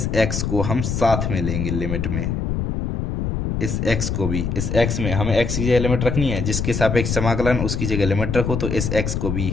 x को हम साथ में लेंगे लिमिट में, इस x को भी, इस x में हमें x की जगह लिमिट रखनी है, जिसके सापेक्ष समाकलन उसकी जगह लिमिट रखो, तो इस x को भी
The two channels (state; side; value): noise; left; rumble, 1 dB below the sound